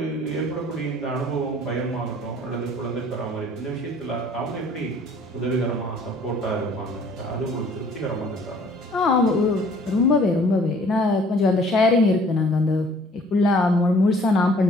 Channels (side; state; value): both; normal; correlation 0.55